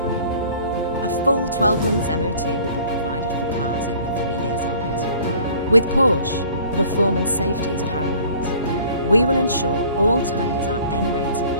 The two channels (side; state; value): both; inverted; correlation -0.51